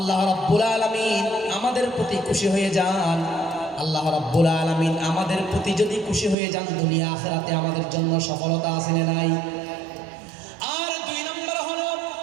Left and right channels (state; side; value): drops out; left; at 6.4 s